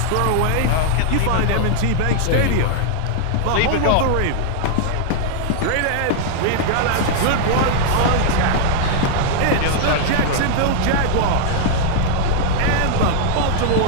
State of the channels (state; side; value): different; both; correlation -0.01